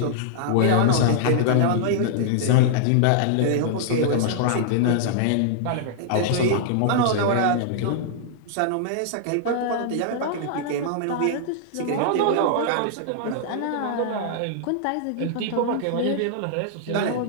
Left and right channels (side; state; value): both; different; correlation -0.01